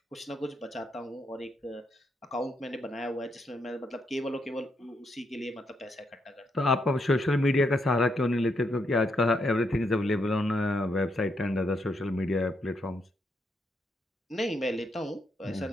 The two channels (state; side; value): normal; both; correlation 0.78